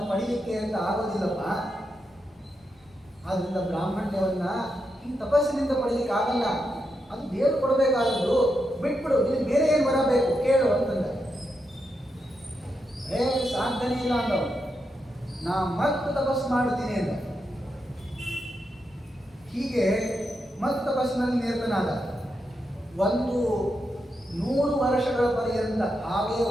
ಪಡಿಲಿಕ್ಕೆ ಅಂತ ಆಗೋದಿಲ್ಲಪ್ಪ. ಆದ್ರಿಂದ ಬ್ರಾಹ್ಮಣ್ಯವನ್ನ ಈ ತಪಸ್ಸಿನಿಂದ ಪಡಿಲಿಕ್ಕೆ ಆಗಲ್ಲ, ಅದು ದೇವರು ಕೊಡಬೇಕಾದದ್ದು. ಬಿಟ್ಬಿಡು, ನಿನಗೆ ಬೇರೆ ಏನು ಬರಬೇಕು ಕೇಳು ಅಂತಂದ. ಸಾಧ್ಯನೇ ಇಲ್ಲ ಅಂದವನು. ನಾ ಮತ್ತೆ ತಪಸ್ಸು ಮಾಡುತ್ತೀನಿ ಅಂತ. ಹೀಗೆ ಮತ್ತೆ ತಪಸ್ಸಿನಲ್ಲಿ ನಿರತನಾದ. 100 ವರ್ಷಗಳ ಪರ್ಯಂತ ಹಾಗೆ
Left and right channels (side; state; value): both; normal; correlation 0.85